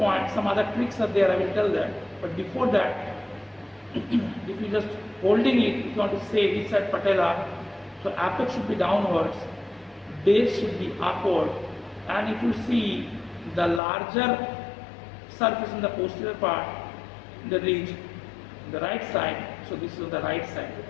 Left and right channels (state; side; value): drops out; right; at 13.8 s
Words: some other tricks are there, I will tell that. But before that, if you just holding it, if you want to say which side patella, so apex should be downwards, base should be upward, and if you see the larger surface in the posterior part, the ridge, the right side, so this is on the right side.